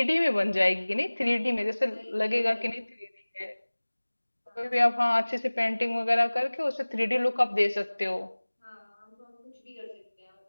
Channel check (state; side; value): inverted; both; correlation -1.00